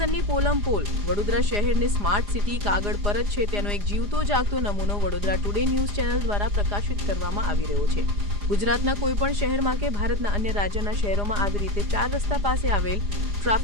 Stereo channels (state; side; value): late; left; 4.9 ms